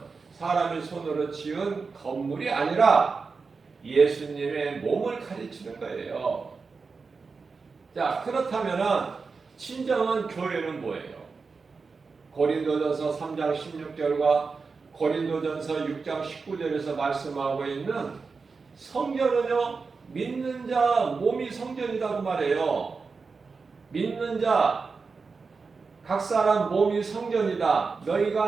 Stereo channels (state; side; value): quieter; left; 4.7 dB